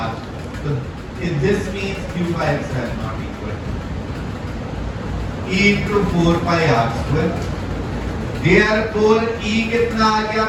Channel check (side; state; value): both; identical; correlation 1.00